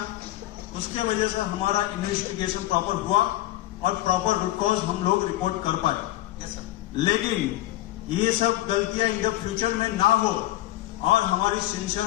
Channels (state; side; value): quieter; right; 15.6 dB